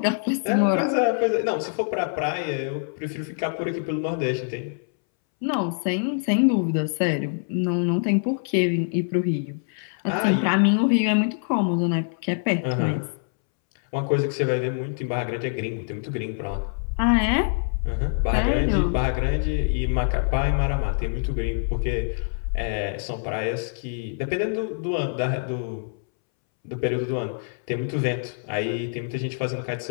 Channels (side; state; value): right; silent; 62 dB below the other